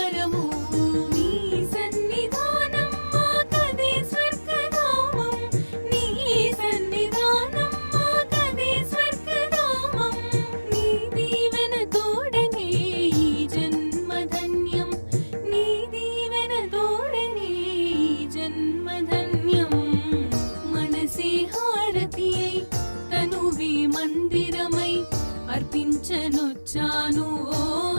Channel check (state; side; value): inverted; both; correlation -1.00